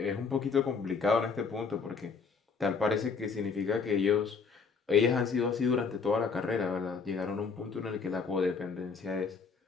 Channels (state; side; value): quieter; right; 5.3 dB